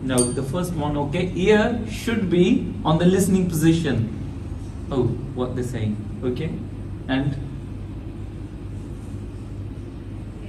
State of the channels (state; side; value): identical; both; correlation 1.00